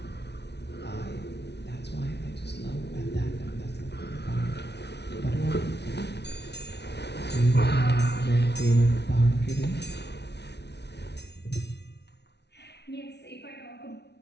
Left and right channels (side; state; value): right; late; 0.50 ms